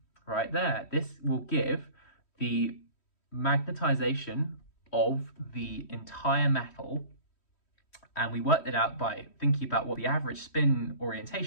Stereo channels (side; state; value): right; late; 3.1 ms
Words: right there. This will give the magnetization of the entire metal, and we worked it out by thinking about what the average spin